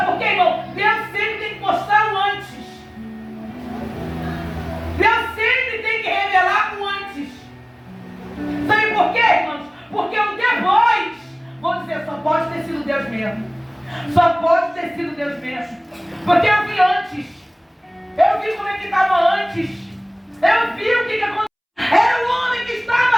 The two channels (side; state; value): both; identical; correlation 1.00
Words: por quê, irmão? Deus sempre tem que mostrar o antes. Deus sempre tem que revelar o antes. Sabe por quê, irmãos? Porque o depois, vou dizer, só pode ter sido Deus mesmo. Só pode ter sido Deus mesmo. Porque eu vi antes. Eu vi como é que estava antes. Eu vi o que aconteceu. Era o homem que